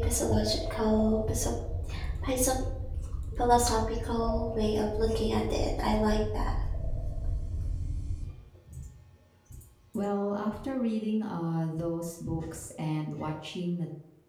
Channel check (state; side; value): identical; both; correlation 1.00